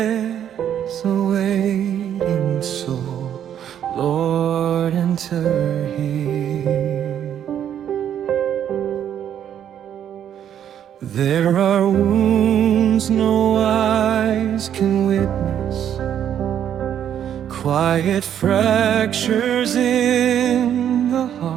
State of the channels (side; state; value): left; quieter; 9.8 dB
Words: awaiting soul, Lord, enter here. There are wounds no eyes can witness, quiet fractures in the